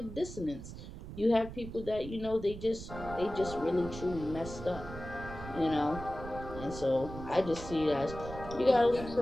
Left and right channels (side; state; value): right; noise; rumble, 11 dB below the sound